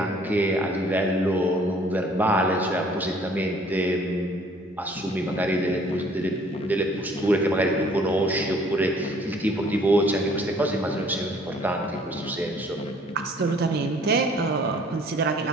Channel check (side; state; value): both; normal; correlation 0.57